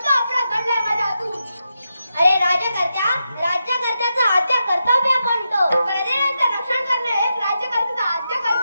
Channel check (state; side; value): inverted; both; correlation -0.86